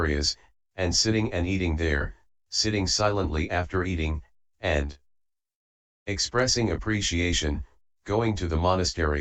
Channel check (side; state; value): both; identical; correlation 1.00